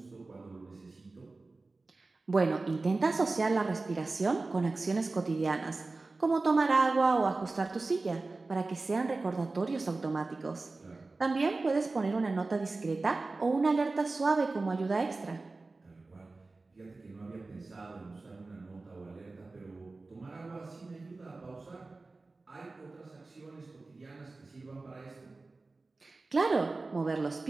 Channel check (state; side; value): quieter; left; 3.5 dB